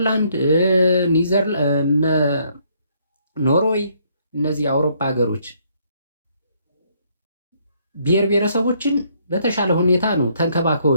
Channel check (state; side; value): inverted; both; correlation -0.68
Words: ኖርዌይ እነዚህ የአውሮፓ ሀገሮች ብሔር ብሔረሰቦችን በተሻለ ሁኔታ ነው ተንከባክበው